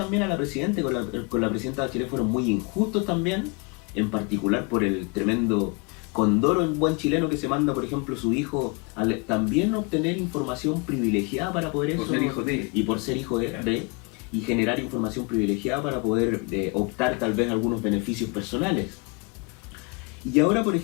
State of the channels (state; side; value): quieter; right; 30.2 dB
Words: a la presidenta, con la presidenta Bachelet fueron muy injustos también, en particular por el tremendo condoro en buen chileno que se manda, por ejemplo, su hijo a también obtener información privilegiada para poder eso, por ser hijo de, y por ser hijo de y generar información privilegiada para poder optar tal vez a algunos beneficios personales. Y ahora, por